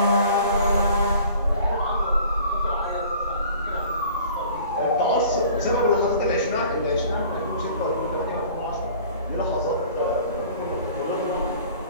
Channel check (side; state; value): both; inverted; correlation -0.48